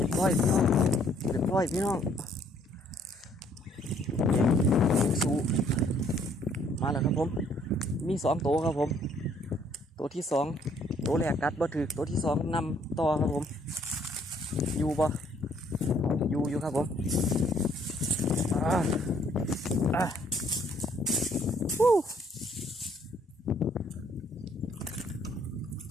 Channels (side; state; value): both; normal; correlation 0.64